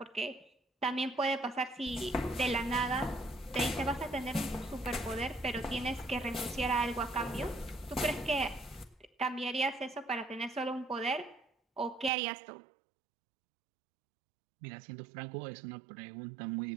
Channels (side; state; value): left; drops out; at 12.1 s